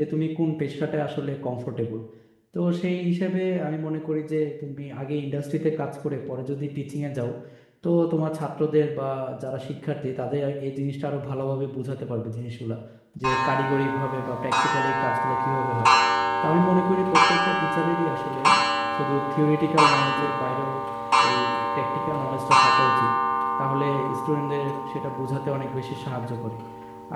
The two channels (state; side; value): identical; both; correlation 1.00